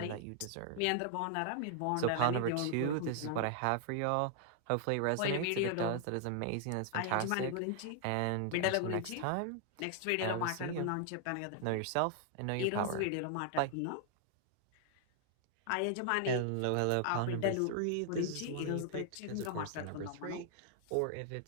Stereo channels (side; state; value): both; different; correlation 0.00